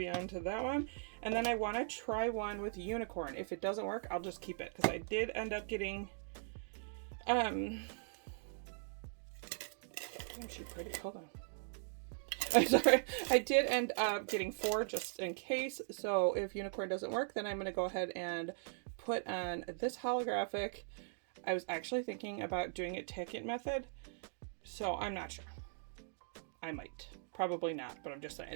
onto that one. And then I want to try one with unicorn. If it doesn't work, I'll just keep it because I did end up getting, isn't she pretty? Hold on. I'm sorry, I did end up getting 4 just in case, so if unicorn doesn't work, then I'm going to go ahead and put on this holographic. I was actually thinking about doing it ticket method, so I'm not sure. I might. Probably not, but I'm just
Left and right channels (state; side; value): silent; left; digital silence